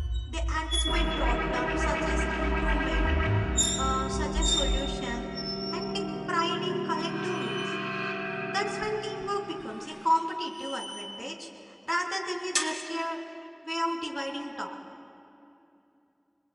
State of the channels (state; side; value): identical; both; correlation 1.00